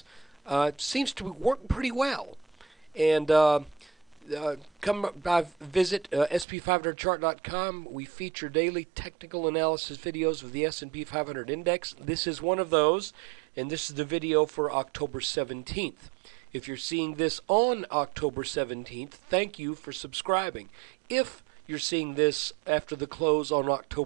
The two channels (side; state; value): left; drops out; at 6.5 s